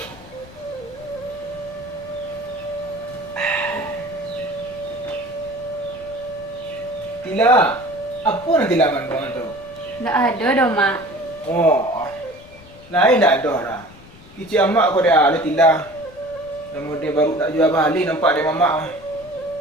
Tila, apa nanti laman kau tu? Tak ada dah, Mak. Oh, lain tak ada dah. Kicik amak kau dia ada Tila. Namun dia baru nak jual balik nampak dia mamak.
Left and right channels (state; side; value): noise; left; rumble, 22 dB below the sound